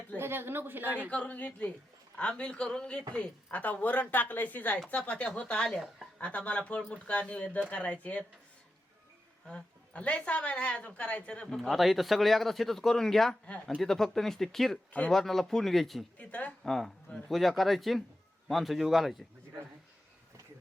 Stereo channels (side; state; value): both; normal; correlation 0.90